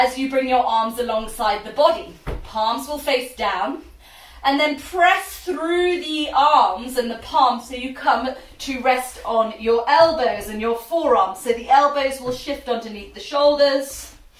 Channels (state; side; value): identical; both; correlation 1.00